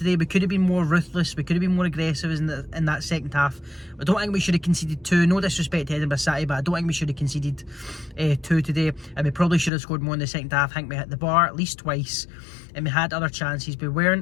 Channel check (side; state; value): right; drops out; at 9.7 s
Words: We could have been more ruthless, we could have been more aggressive in that second half. I don't think we should have conceded 2, no disrespect to Edinburgh City, but I don't think we should have conceded 2 today, and we probably should have scored more in the second half. I think we hit the bar at least twice, and we had other chances. We